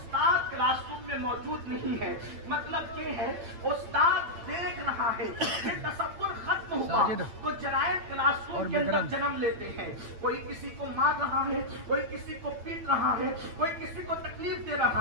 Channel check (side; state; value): left; late; 8.8 ms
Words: क्लासरूम में मौजूद नहीं है, मतलब ये है उस्ताद देख रहा है, ये तसव्वुर खत्म हुआ तो जराइम क्लासरूम के अंदर जन्म लेते हैं। कोई किसी को मार रहा है, कोई किसी को पीट रहा है, कोई किसी को तकलीफ दे